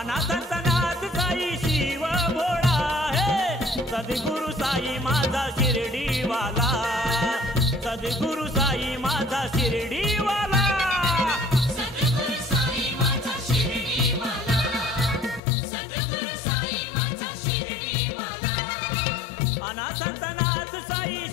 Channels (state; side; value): drops out; right; at 15.4 s